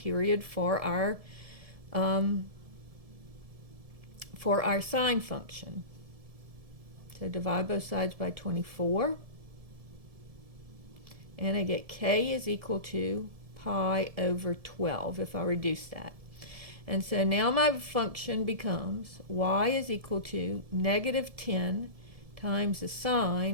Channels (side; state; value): left; late; 1.7 ms